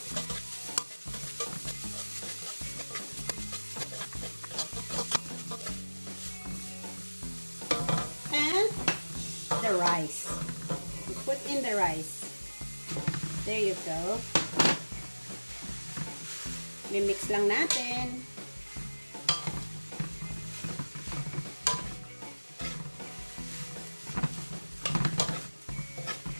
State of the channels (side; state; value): both; inverted; correlation -1.00